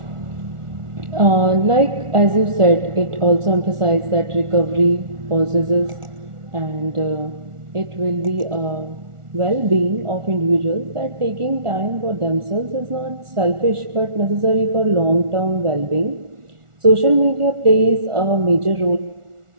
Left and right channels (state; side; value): late; left; 1.4 ms